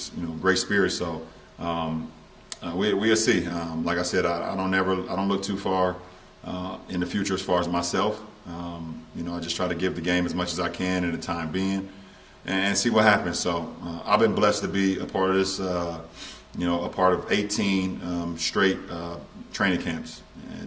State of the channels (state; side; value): identical; both; correlation 1.00